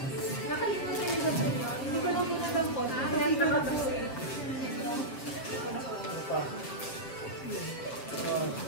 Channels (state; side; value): late; right; 7.7 ms